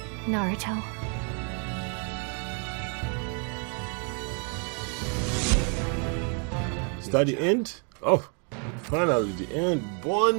Naruto. Is that the end? Oh, finally the end.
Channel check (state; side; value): quieter; left; 38.7 dB